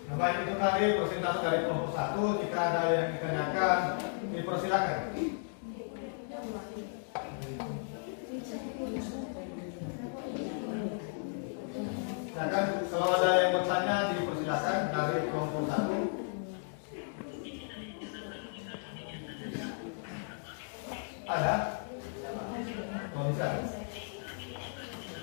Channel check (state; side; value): silent; right; digital silence